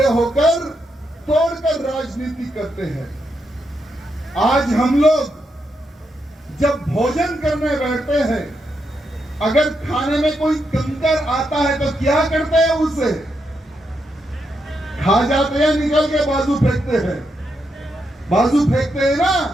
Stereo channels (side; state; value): both; normal; correlation 0.82